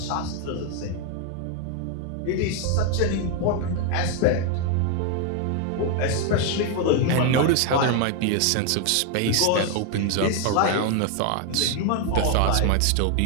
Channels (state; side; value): different; both; correlation 0.01